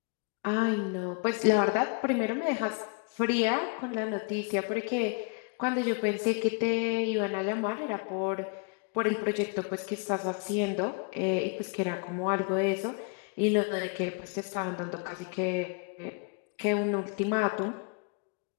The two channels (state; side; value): quieter; right; 35.7 dB